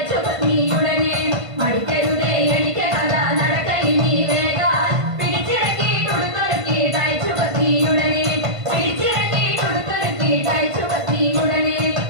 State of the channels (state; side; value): late; left; 1.5 ms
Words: പത്നി ഉടനെ പഠിക്കരുതേ എനിക്ക് കഥ നടക്കയിനി വേഗ പിടിച്ചിറക്കി കൊടുത്തൊരുക്കി തയ്ച്ചു പത്നി ഉടനെ പിടിച്ചിറക്കി കൊടുത്തൊരുക്കി തയ്ച്ചു പത്നി ഉടനെ